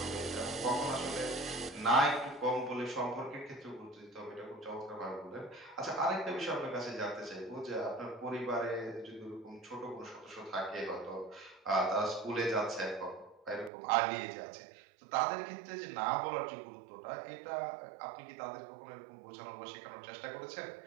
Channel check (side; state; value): left; drops out; at 13.7 s